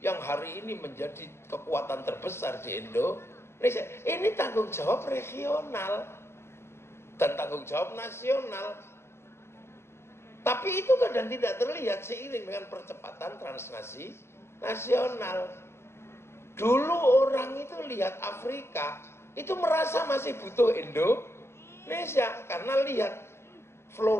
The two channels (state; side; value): late; right; 0.12 ms